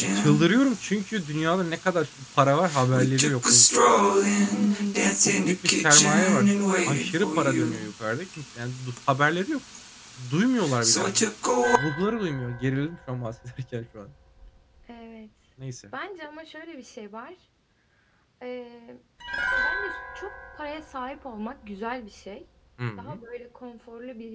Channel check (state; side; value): identical; both; correlation 1.00